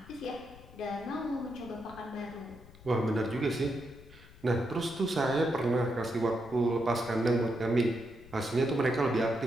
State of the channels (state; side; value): noise; left; rumble, 20 dB below the sound